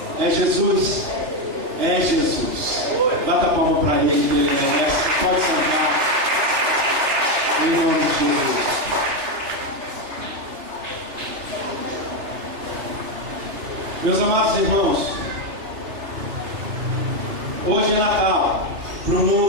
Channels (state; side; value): late; left; 3.3 ms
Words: É Jesus. É Jesus. Bata a palma para ele, que ele merece. Pode sentar. Em nome de Jesus. Meus amados irmãos, hoje é Natal para o